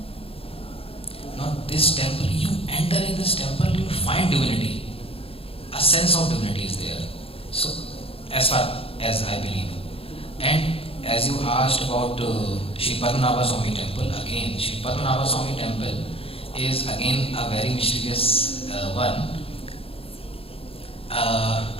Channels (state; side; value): late; right; 0.27 ms